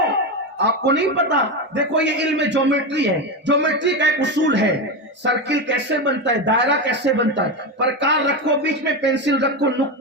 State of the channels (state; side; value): normal; both; correlation 0.15